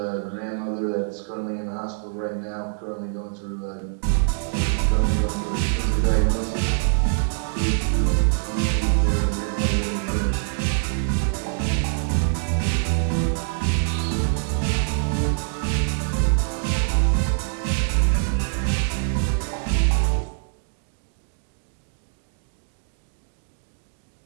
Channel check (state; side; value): silent; left; digital silence